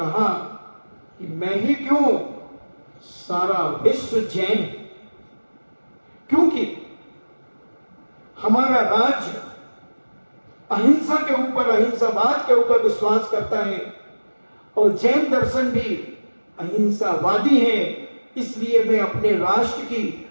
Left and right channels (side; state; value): both; inverted; correlation -1.00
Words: कि मैं ही क्यों, सारा विश्व जैन है। क्योंकि हमारा राज्य अहिंसा के ऊपर, अहिंसावाद के ऊपर विश्वास करता है और जैन दर्शन भी अहिंसावादी है। इसलिए मैं अपने राष्ट्र की